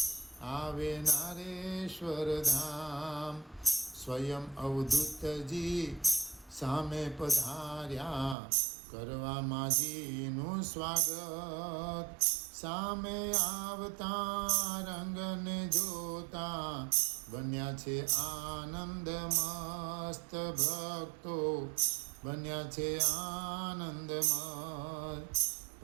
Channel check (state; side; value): drops out; left; at 8.3 s